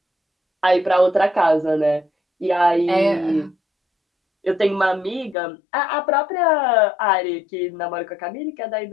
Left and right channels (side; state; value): right; drops out; at 5.4 s